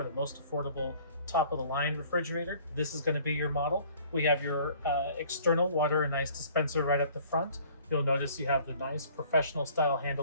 the most affordable top of the line refrigerator, this is going to be your model. We have your external water and ice dispenser right at the front. You'll notice you have the nice professional style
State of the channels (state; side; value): inverted; both; correlation -0.54